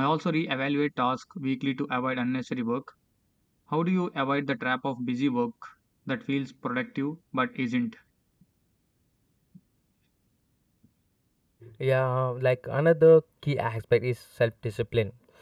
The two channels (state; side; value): identical; both; correlation 1.00